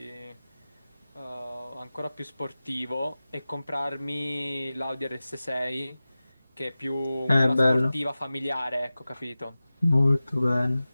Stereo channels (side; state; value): both; inverted; correlation -0.96